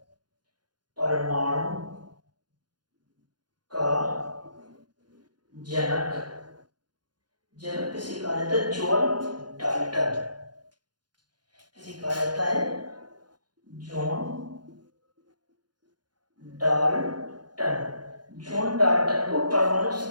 परमाणु का जनक किसे कहा जाता है? John Dalton. किसे कहा जाता है? जॉन डाल्टन को परमाणु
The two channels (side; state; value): left; late; 0.71 ms